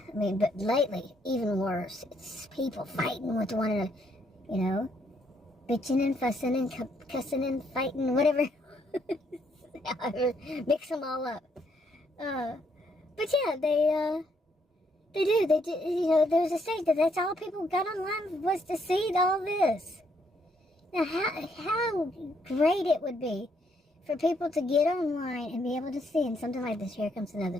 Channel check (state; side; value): normal; both; correlation 0.72